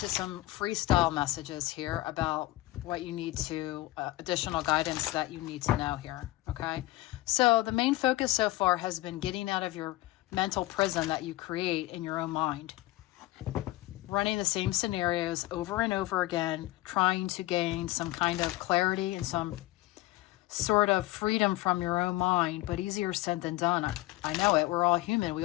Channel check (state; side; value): quieter; right; 18.0 dB